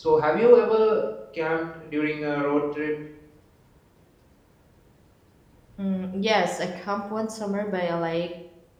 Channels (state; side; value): identical; both; correlation 1.00